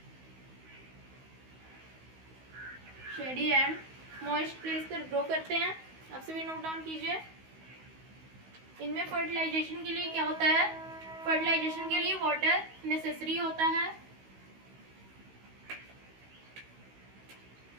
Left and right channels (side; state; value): left; late; 16 ms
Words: शेडी एंड मॉइस्ट प्लेस पर ग्रो करते हैं। आप सभी नोट डाउन कीजिए। इनमें फर्टिलाइजेशन के लिए क्या होता है? फर्टिलाइजेशन के लिए वाटर नेसेसरी होता है।